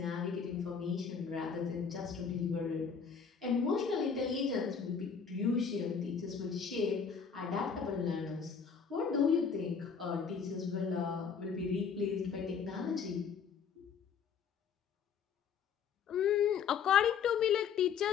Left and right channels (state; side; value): quieter; right; 6.4 dB